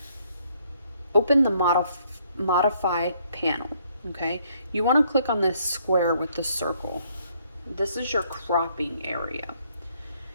open the modify panel. Okay, you want to click on this square with the circle. This is your cropping area.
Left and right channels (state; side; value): inverted; both; correlation -0.68